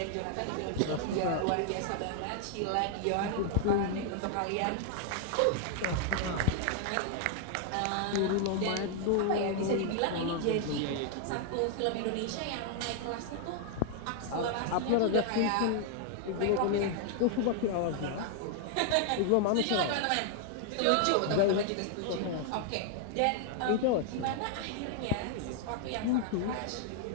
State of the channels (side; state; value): both; different; correlation 0.00